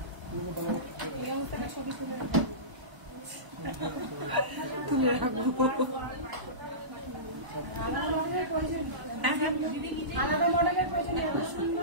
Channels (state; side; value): late; left; 1.0 ms